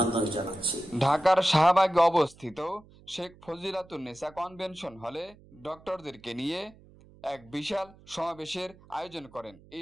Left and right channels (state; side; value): noise; right; hum, 24 dB below the sound